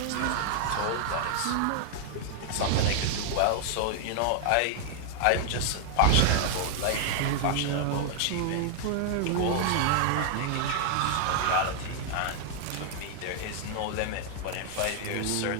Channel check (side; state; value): both; different; correlation 0.00